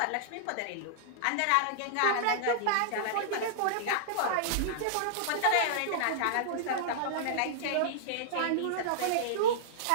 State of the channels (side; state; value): both; different; correlation -0.01